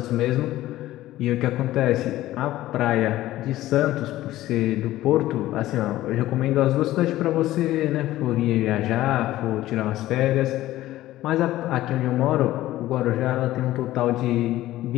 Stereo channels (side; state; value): right; quieter; 15.3 dB